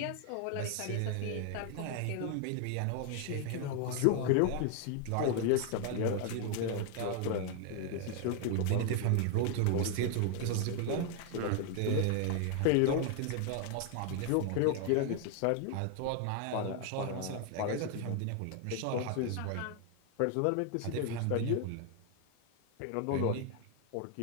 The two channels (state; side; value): different; both; correlation 0.00